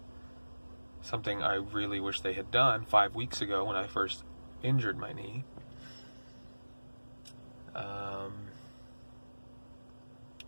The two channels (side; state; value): both; inverted; correlation -1.00